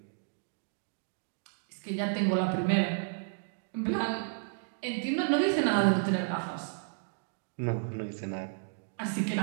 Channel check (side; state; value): left; silent; digital silence